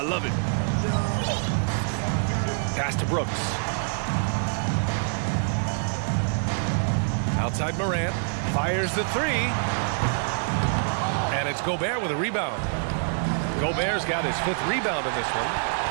love it. Pass to Brooks. Outside Morant. Fires the three. And it's Gobert with a rebound. Gobert's got his 5th rebound in this one.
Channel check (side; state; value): left; silent; digital silence